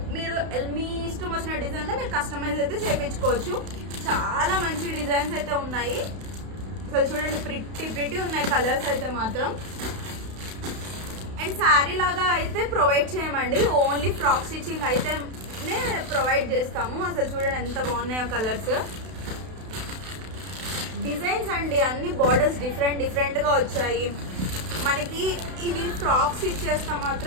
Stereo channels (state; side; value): late; left; 32 ms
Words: మీరు మీ ఇష్టం వచ్చిన డిజైన్లో మీరు కస్టమైజ్ అయితే చేయించుకోవచ్చు. చాలా మంచి డిజైన్స్ అయితే ఉన్నాయి. అసలు చూడండి ప్రిటీ ఉన్నాయి కలర్స్ అయితే మాత్రం. అండ్ శారీ లాగా అయితే ప్రొవైడ్ చేయమండి, ఓన్లీ ఫ్రాక్ స్టిచ్చింగ్ అయితే ప్రొవైడ్ చేస్తాము. అసలు చూడండి ఎంత బాగున్నాయో కలర్స్. డిజైన్స్ అండి అన్ని బార్డర్స్ డిఫరెంట్గా వచ్చాయి మనకి. ఇవి ఫ్రాక్స్ ఇచ్చేస్తా